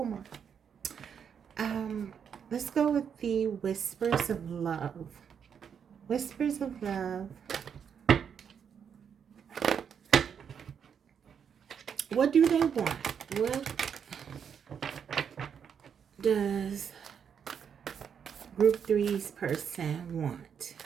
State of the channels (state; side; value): quieter; left; 7.5 dB